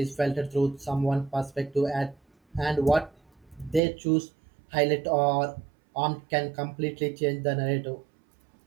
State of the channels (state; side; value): drops out; left; at 3.8 s